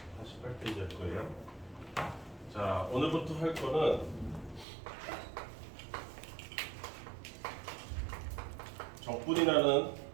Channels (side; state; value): left; drops out; at 4.7 s